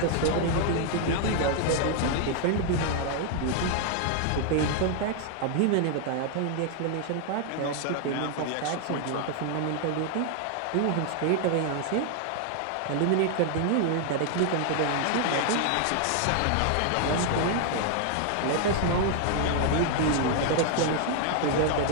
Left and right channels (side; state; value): both; different; correlation 0.00